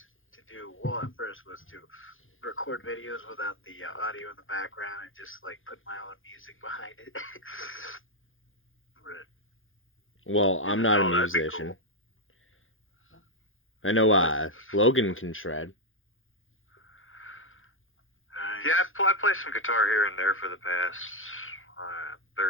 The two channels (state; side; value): late; right; 0.59 ms